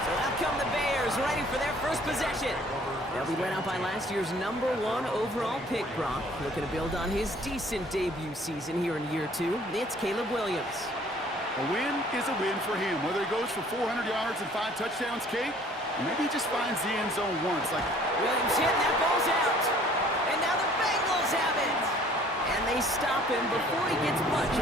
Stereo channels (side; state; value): both; normal; correlation 0.55